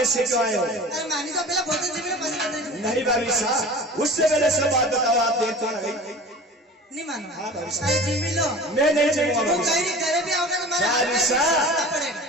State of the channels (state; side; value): normal; both; correlation 0.38